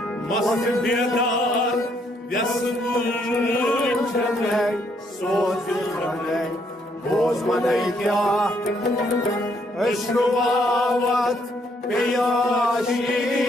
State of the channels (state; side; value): normal; both; correlation 0.71